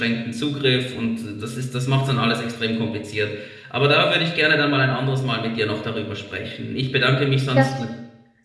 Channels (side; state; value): both; identical; correlation 1.00